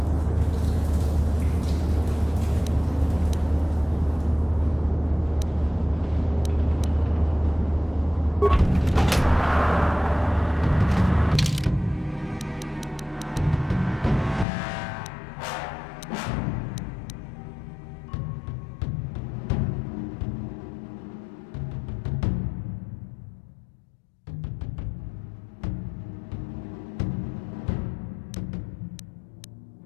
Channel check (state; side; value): drops out; right; at 14.5 s